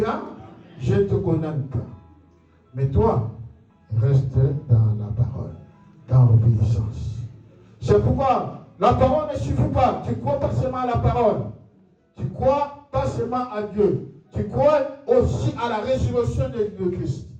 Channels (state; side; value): identical; both; correlation 1.00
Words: Je ne te condamne pas. Mais toi, reste dans la parole, dans l'obéissance. C'est pourquoi la parole ne suffit pas. Tu crois pas seulement à la parole. Tu crois pas seulement à Dieu. Tu crois aussi à la résurrection de Christ.